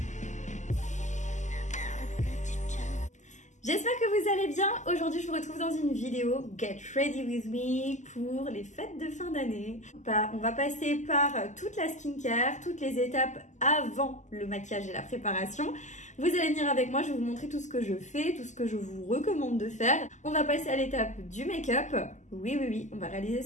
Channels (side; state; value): right; late; 0.34 ms